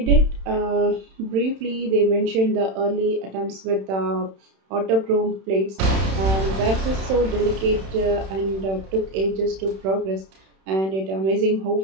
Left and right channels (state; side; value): late; left; 31 ms